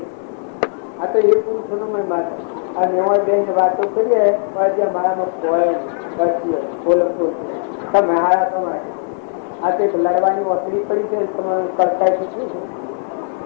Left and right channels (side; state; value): right; silent; 67 dB below the other